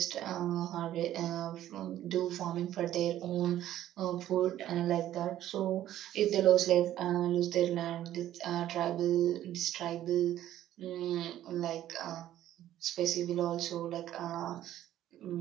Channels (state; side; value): quieter; left; 12.6 dB